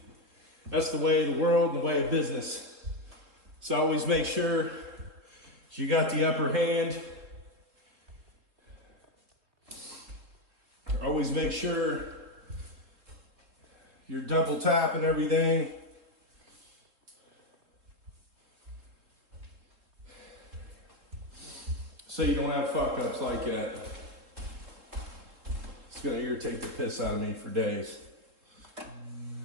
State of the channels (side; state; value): left; late; 3.6 ms